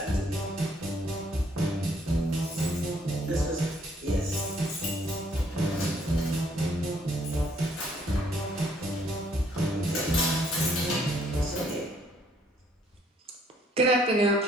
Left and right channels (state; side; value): normal; both; correlation 0.66